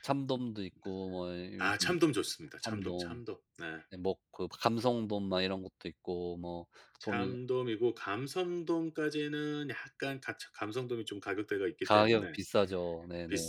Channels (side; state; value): both; identical; correlation 1.00